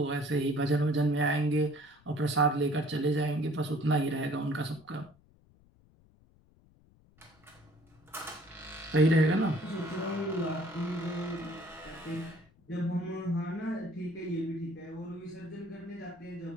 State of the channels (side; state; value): left; noise; rumble, 29 dB below the sound